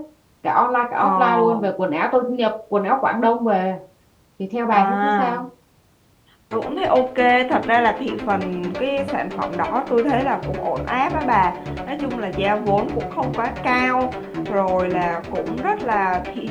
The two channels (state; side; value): identical; both; correlation 1.00